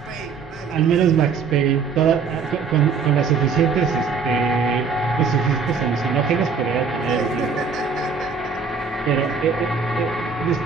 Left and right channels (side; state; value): left; quieter; 5.4 dB